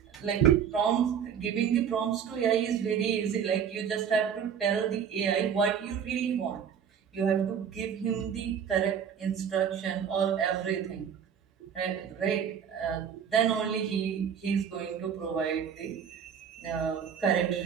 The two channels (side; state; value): left; quieter; 7.8 dB